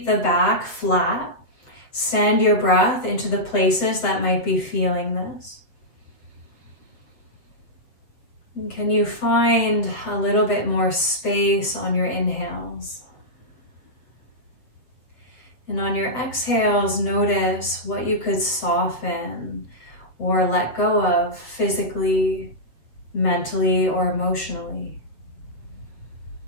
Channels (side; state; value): right; late; 8.1 ms